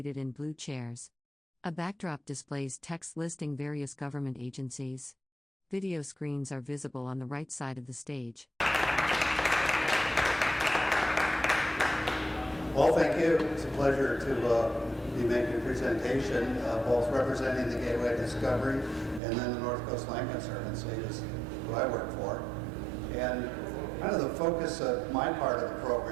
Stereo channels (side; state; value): left; drops out; at 19.2 s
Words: in blue chairs. A backdrop displays text listing various government agencies. Video screens are visible on the right side of the stage. Well, thank you. It's a pleasure to be making a presentation, both representing the Gateway Discovery and then the North Coast Land Conservancy, is who I work for. And kind of the focus of my part of the